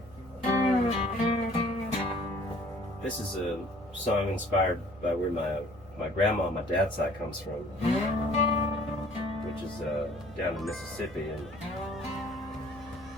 This is a song inspired by where my grandma on my dad's side comes from, which is down in Mississippi, and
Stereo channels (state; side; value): noise; right; hum, 20 dB below the sound